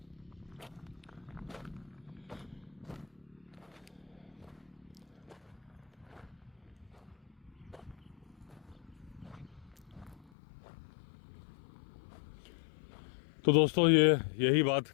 तो दोस्तों यही बात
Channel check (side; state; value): right; drops out; at 10.3 s